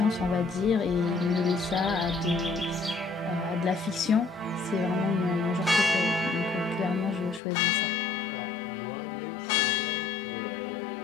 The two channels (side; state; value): right; drops out; at 7.4 s